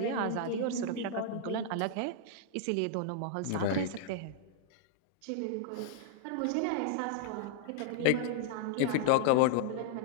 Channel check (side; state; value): both; different; correlation -0.01